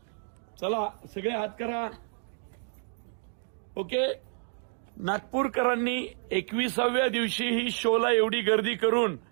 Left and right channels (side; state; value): left; silent; 58 dB below the other